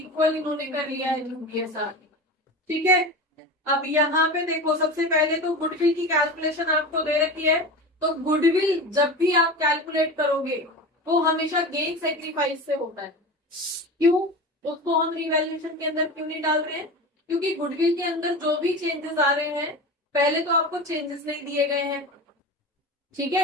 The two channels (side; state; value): both; normal; correlation 0.29